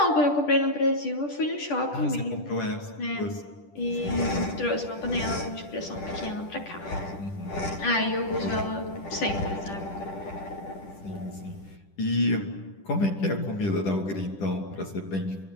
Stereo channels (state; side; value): late; right; 10 ms